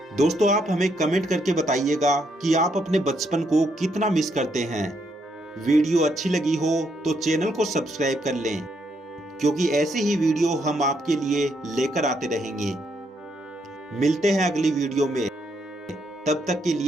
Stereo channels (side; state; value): both; normal; correlation 0.75